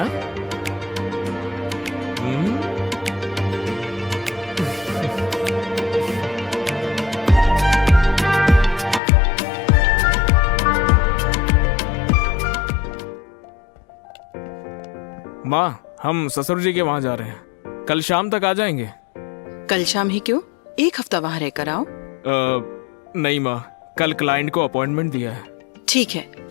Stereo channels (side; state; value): right; drops out; at 9.0 s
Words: माँ, हम ससुर जी के वहां जा रहे हैं। कल शाम तक आ जाएंगे। कल शाम ही क्यों, एक हफ्ता वहां रहकर आओ। नहीं माँ, कल क्लाइंट को अपॉइंटमेंट दिया है। ठीक है,